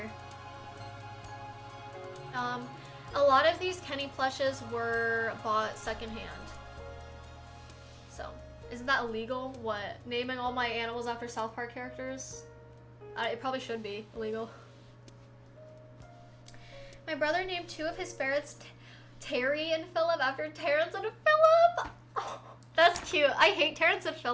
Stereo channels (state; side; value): identical; both; correlation 1.00